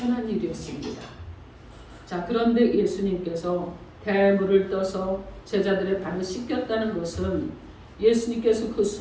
일이었습니다. 자, 그런데 예수님께서 대하여 물을 떠서 제자들의 발을 씻겼다는 것은 예수님께서 그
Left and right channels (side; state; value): both; identical; correlation 1.00